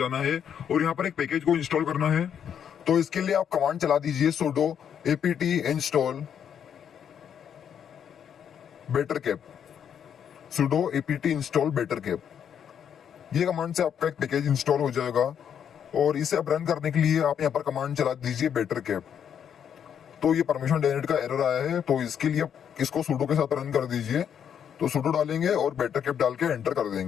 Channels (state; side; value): quieter; right; 8.5 dB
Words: है और यहाँ पर एक पैकेज को इंस्टॉल करना है। तो इसके लिए आप कमांड चला दीजिए sudo apt install bettercap, sudo apt install bettercap। ये कमांड से आपका एक पैकेज इंस्टॉल हो जाएगा और इसे अब रन करने के लिए आप यहाँ पर कमांड चला दीजिए bettercap। तो ये परमिशन डेनिड का एरर आया है, तो इसके लिए आप इसको sudo के साथ रन कर दीजिए। तो sudo डालेंगे और bettercap डाल के एंटर कर